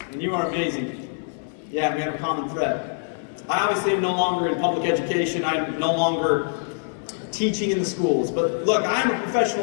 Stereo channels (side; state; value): right; silent; digital silence